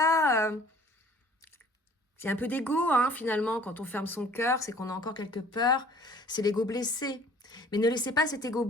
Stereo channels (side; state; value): both; normal; correlation 0.52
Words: c'est un peu d'ego, hein, finalement, quand on ferme son cœur, c'est qu'on a encore quelques peurs. C'est l'ego blessé. Mais ne laissez pas cet ego